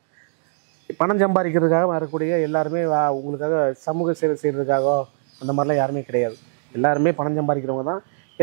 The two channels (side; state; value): left; silent; digital silence